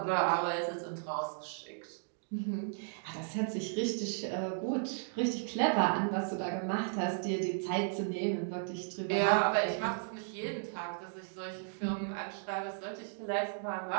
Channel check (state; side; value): silent; left; digital silence